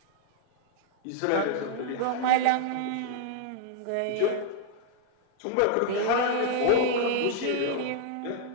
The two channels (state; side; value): different; both; correlation 0.00